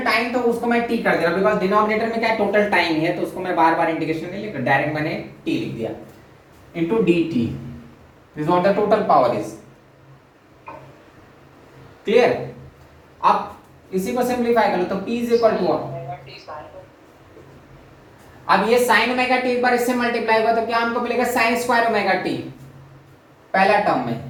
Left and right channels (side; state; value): both; identical; correlation 1.00